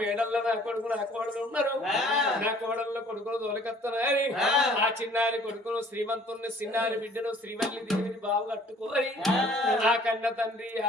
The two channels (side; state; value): both; normal; correlation 0.55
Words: నా కొడుకు నా కోడలు ఉన్నారు నా కోడల్లో కొడుకులు తోలకత్తనారి ఆ చిన్నారి కొడుకును శ్రీమంతుని చిన్నారి బిడ్డను శ్రీవల్లి దేవిని బావు కట్టుకోని ఆ కన్న తండ్రి